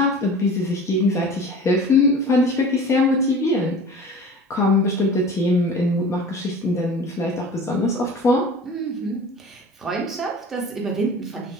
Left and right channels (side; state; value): both; normal; correlation 0.40